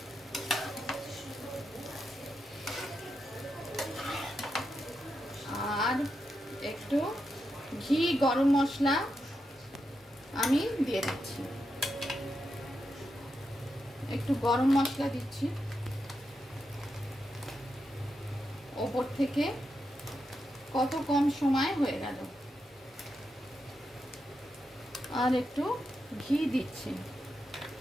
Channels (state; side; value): normal; both; correlation 0.86